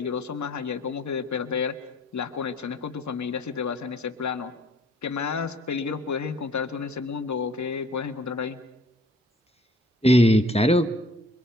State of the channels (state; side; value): normal; both; correlation 0.56